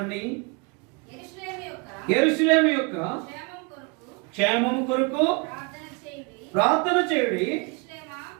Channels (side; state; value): left; quieter; 30.5 dB